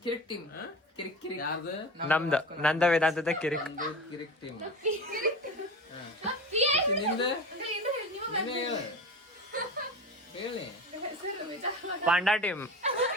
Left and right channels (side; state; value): both; normal; correlation 0.31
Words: ಕಿರಿಕ್ ಟೀಮ್. ಕಿರಿಕ್ ಕಿರಿಕ್ ಯಾರ್ದು? ನಂದ ವೇದಾಂತದ ಕಿರಿಕ್. ಕಿರಿಕ್ ಟೀಮ್. ನೀವು ನಿಂದ ನೀನೇ ಹೇಳು. ಹೇಳಿ. Panda team.